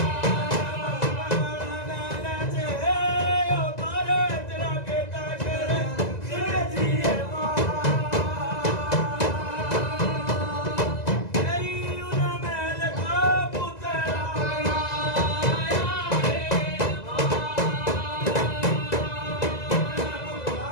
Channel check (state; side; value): late; right; 2.0 ms